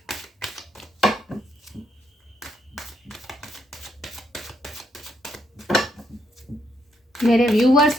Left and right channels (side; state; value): both; normal; correlation 0.76